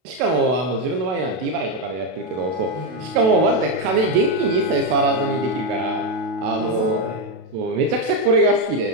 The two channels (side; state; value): left; late; 32 ms